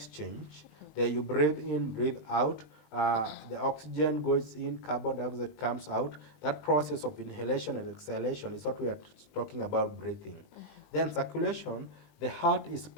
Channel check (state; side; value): late; right; 20 ms